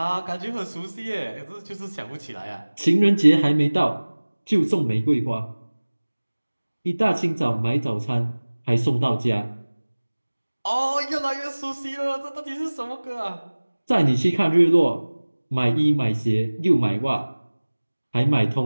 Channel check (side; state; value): both; inverted; correlation -1.00